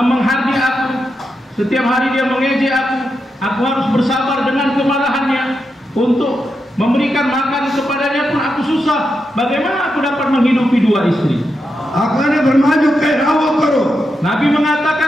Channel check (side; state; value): both; normal; correlation 0.86